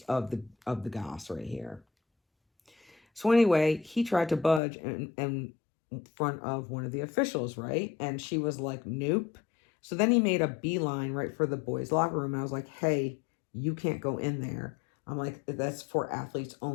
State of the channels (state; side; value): drops out; right; at 4.6 s